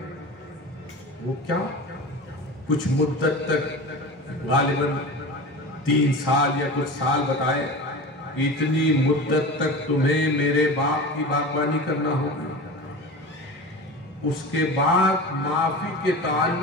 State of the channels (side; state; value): both; normal; correlation 0.31